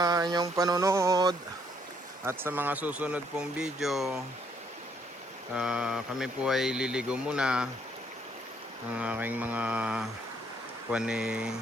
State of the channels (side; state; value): both; normal; correlation 0.68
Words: inyong panonood at sa mga susunod pong video. Kami po ay liligo muna ng aking mga